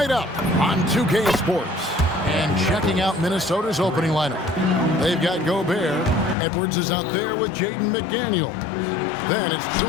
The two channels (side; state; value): right; drops out; at 6.4 s